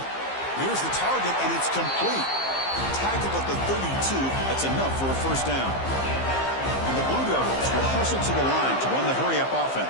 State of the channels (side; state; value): right; late; 15 ms